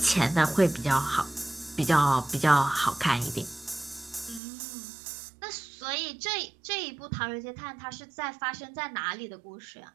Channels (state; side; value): drops out; left; at 4.4 s